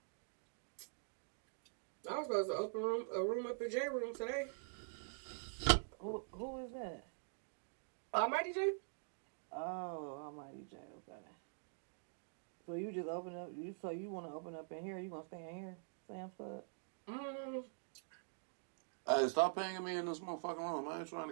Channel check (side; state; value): left; silent; digital silence